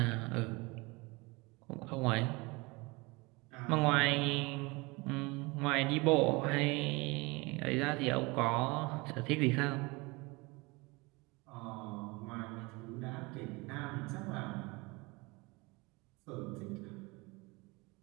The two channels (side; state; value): left; quieter; 25.2 dB